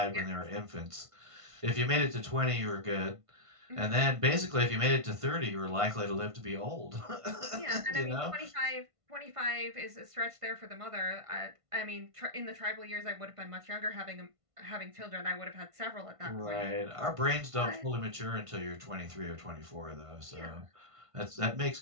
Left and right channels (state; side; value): late; left; 1.5 ms